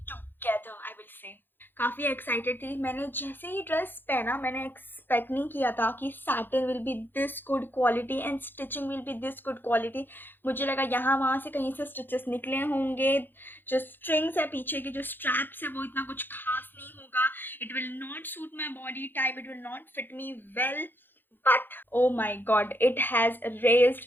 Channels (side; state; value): right; late; 0.096 ms